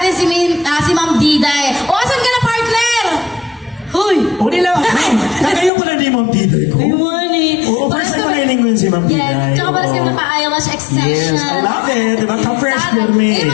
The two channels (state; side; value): drops out; right; at 5.7 s